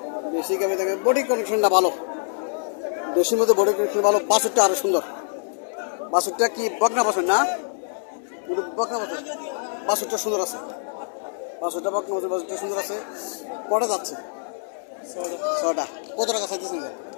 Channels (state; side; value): silent; right; digital silence